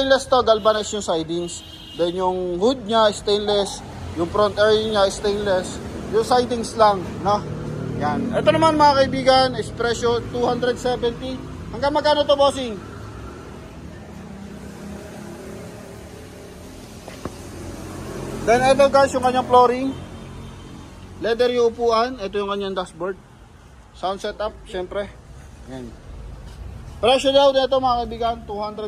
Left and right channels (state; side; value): identical; both; correlation 1.00